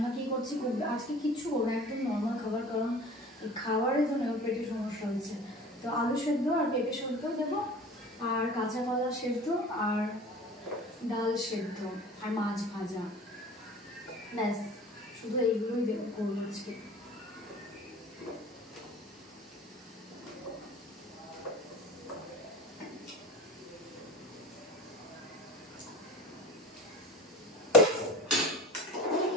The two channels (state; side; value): normal; both; correlation 0.40